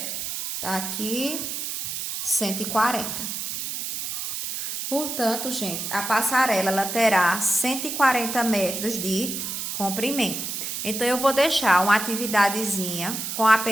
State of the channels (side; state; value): right; noise; hiss, 4 dB below the sound